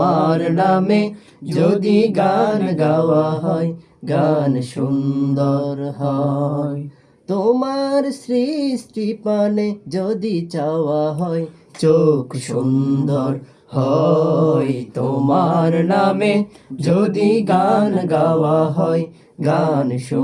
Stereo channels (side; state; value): both; identical; correlation 1.00